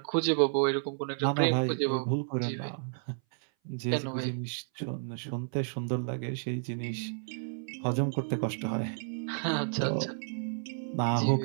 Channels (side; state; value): left; silent; 57 dB below the other